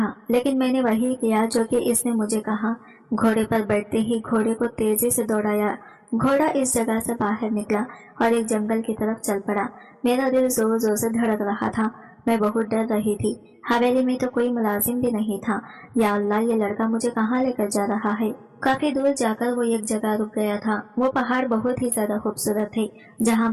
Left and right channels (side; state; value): both; identical; correlation 1.00